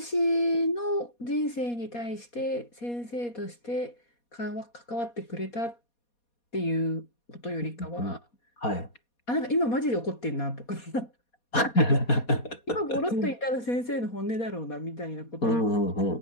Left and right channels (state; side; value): late; right; 4.2 ms